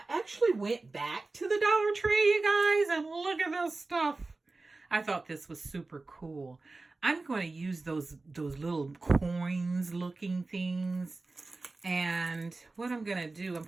actually went back to the Dollar Tree, you guys, and look at this stuff. I thought this was super cool. I'm going to use those little coins looking things. And what I'm going to do, I'm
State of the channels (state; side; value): quieter; left; 3.4 dB